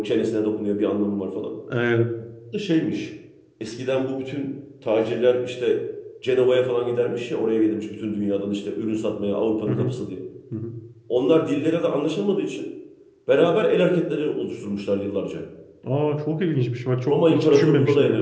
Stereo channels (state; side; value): identical; both; correlation 1.00